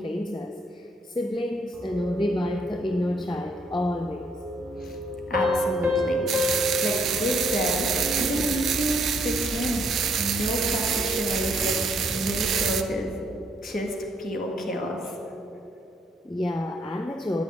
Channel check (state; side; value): normal; both; correlation 0.70